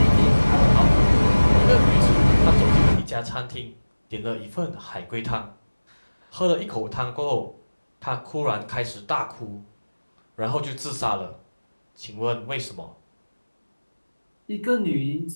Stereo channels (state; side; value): inverted; both; correlation -1.00